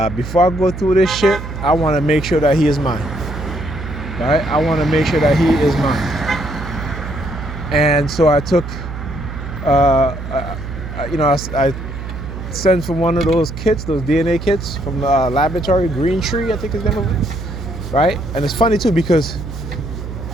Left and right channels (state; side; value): noise; right; hum, 8 dB below the sound